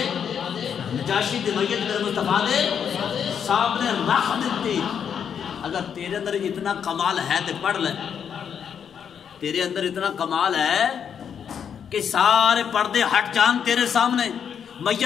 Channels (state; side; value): quieter; right; 7.8 dB